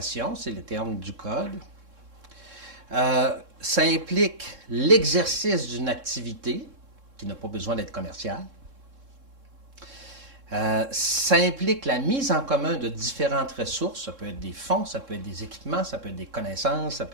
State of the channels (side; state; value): left; late; 3.7 ms